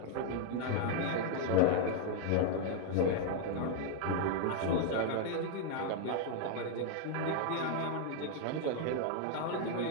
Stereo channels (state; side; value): different; both; correlation 0.00